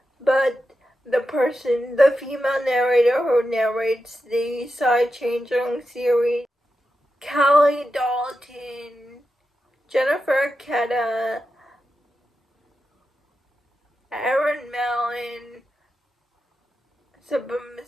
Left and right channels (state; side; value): normal; both; correlation 0.89